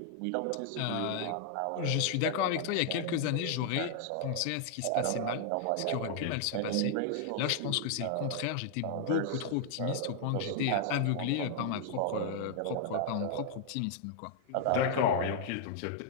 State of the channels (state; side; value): different; both; correlation -0.01